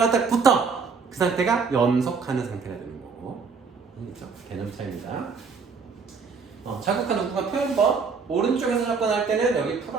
딱 붙어. 그 상태가 연속하는 상태가 되는 거고. 그렇죠? 개념 차이입니다. 자극한 우극한 표현법. 오른쪽에서 접근할 때는 여기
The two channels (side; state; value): left; quieter; 5.3 dB